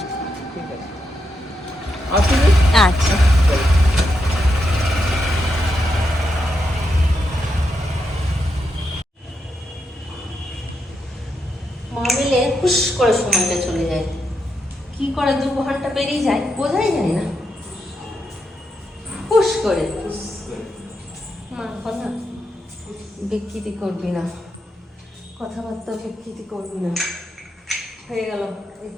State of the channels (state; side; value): normal; both; correlation 0.84